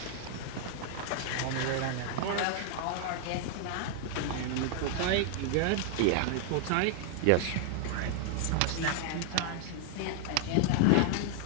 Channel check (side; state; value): both; different; correlation 0.00